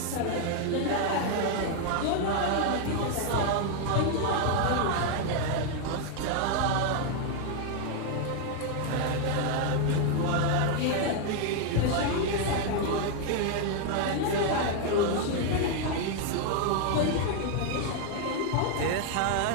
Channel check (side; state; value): both; different; correlation 0.00